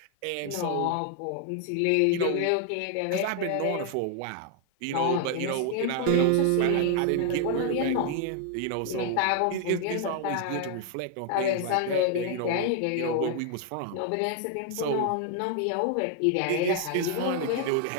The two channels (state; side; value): different; both; correlation 0.00